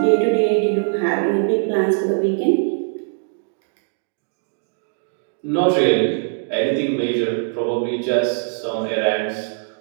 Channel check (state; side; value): silent; left; digital silence